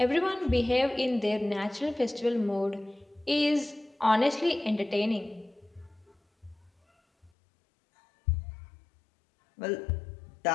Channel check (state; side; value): drops out; right; at 7.3 s